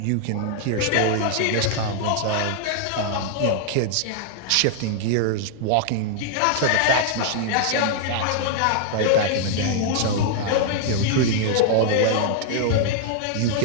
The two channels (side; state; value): both; different; correlation -0.01